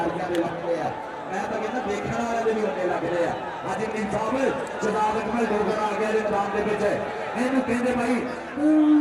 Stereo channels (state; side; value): identical; both; correlation 1.00